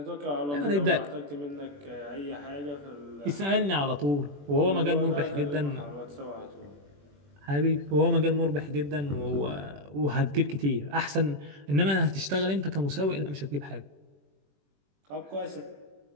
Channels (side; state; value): left; late; 21 ms